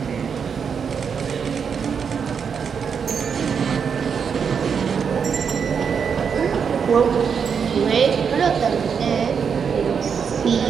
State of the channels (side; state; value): left; quieter; 6.6 dB